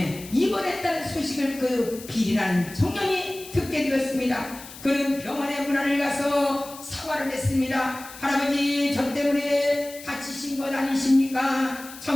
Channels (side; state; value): left; noise; hiss, 16 dB below the sound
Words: 입원했다는 소식을 그 빌이라는 청년이 듣게 되었습니다. 그는 병원의 문안을 가서 사과를 했습니다. 할아버지, 저 때문에 다치신 것 아니십니까?